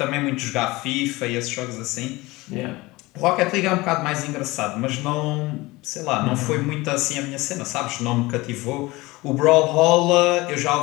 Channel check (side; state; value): right; quieter; 21.3 dB